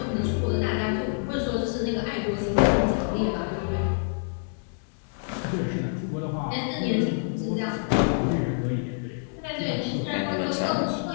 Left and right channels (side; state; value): right; silent; digital silence